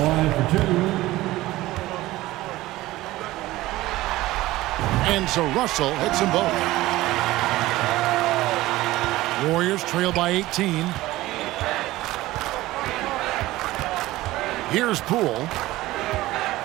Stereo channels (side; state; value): left; quieter; 17.4 dB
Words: line for 2. And so Russell hits them both. Warriors trail by 18. Here's Poole.